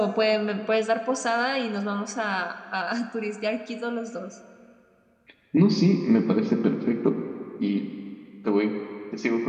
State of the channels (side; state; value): both; identical; correlation 1.00